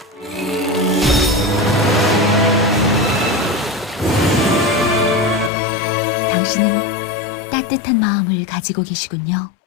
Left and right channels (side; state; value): right; drops out; at 5.5 s